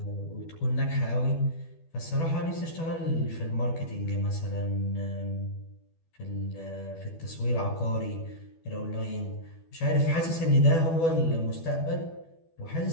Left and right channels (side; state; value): right; late; 12 ms